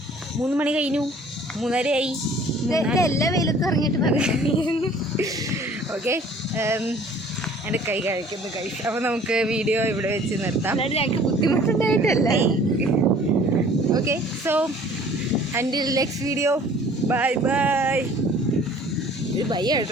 3 മണി കഴിഞ്ഞു, 3:30 ആയി. എല്ലാ വെയിലത്തും ഇറങ്ങിയിട്ട് പറഞ്ഞു. ഓക്കെ, എൻ്റെ കൈ കഴിക്കുന്നു കഴിച്ചു. അപ്പോൾ നമുക്ക് വീഡിയോ ഇവിടെ വെച്ച് നിർത്താം. ഞങ്ങൾക്ക് ബുദ്ധിമുട്ടുണ്ടായിട്ടല്ല. Okay, so until next video, bye bye. ഇത് ബൈ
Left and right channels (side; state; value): both; normal; correlation 0.52